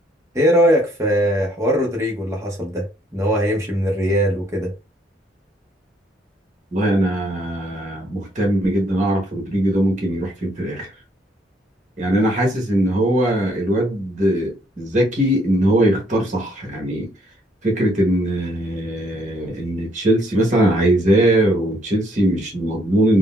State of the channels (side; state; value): both; normal; correlation 0.68